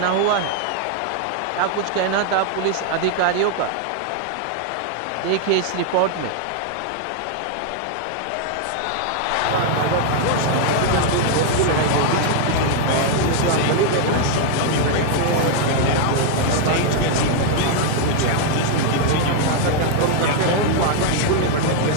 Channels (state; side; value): different; both; correlation 0.00